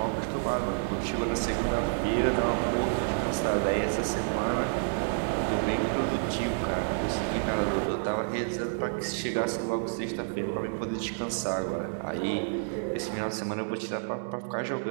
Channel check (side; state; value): left; silent; digital silence